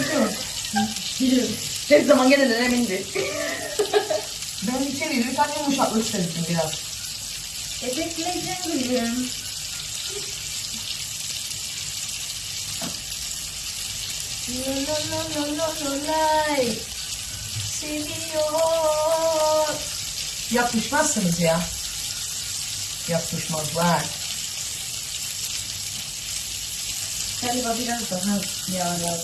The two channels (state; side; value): identical; both; correlation 1.00